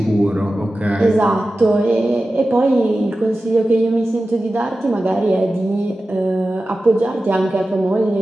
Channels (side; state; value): both; normal; correlation 0.94